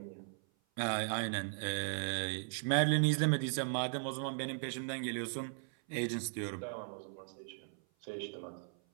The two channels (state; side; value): silent; left; 53 dB below the other